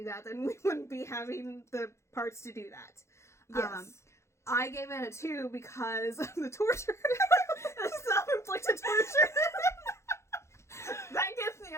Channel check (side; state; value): right; late; 0.13 ms